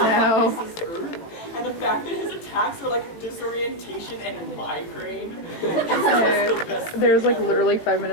And the fact that his attacks are like disorientation and migraine. There's like literally 5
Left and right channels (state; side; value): late; right; 18 ms